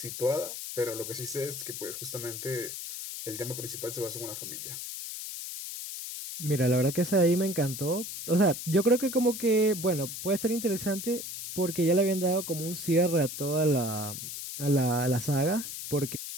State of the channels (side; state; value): left; noise; hiss, 8 dB below the sound